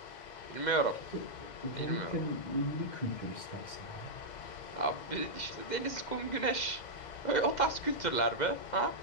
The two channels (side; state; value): right; late; 2.0 ms